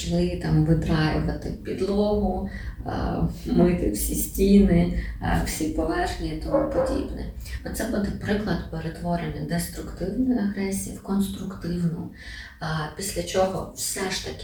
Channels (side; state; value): both; identical; correlation 1.00